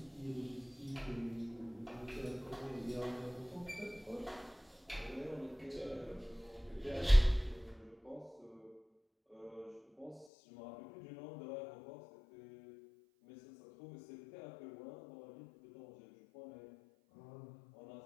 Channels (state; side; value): drops out; right; at 10.2 s